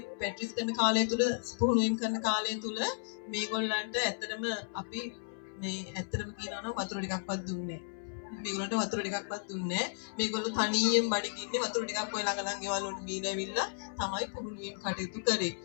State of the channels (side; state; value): right; silent; 55 dB below the other